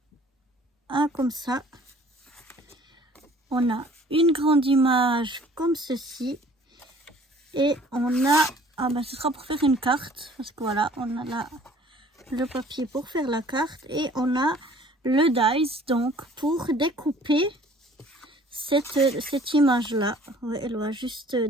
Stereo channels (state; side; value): normal; both; correlation 0.53